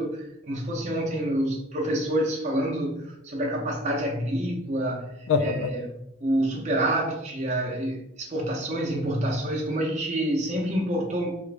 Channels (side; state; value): both; normal; correlation 0.48